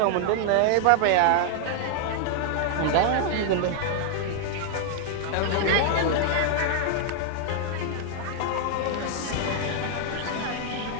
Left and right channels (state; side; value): different; both; correlation 0.00